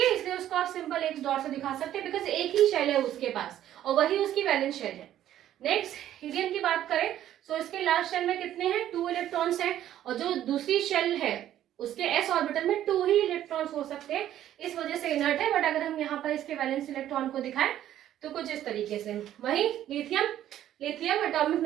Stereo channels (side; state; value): left; quieter; 11.9 dB